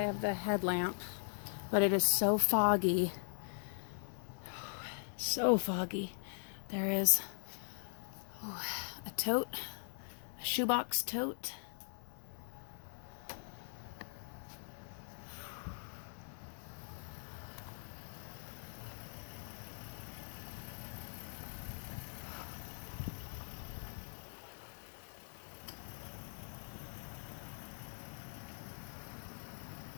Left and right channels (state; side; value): silent; right; digital silence